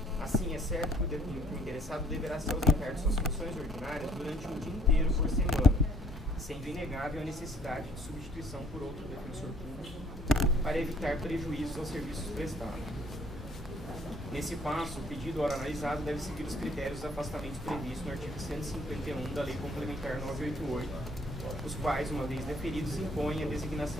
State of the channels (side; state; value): both; normal; correlation 0.61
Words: Assim, é certo que o interessado deverá se ausentar de suas funções ordinárias durante um dia inteiro por semana, sendo inegável a necessidade de substituição por outro defensor público para evitar prejuízos aos serviços prestados. Nesse passo, o pedido, ora analisado, deve seguir os critérios de afastamento previstos no artigo 151 da Lei Complementar 988, os quais, uma vez deferidos, impõem a